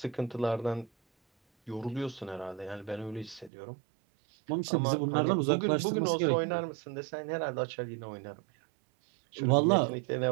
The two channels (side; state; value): left; drops out; at 3.5 s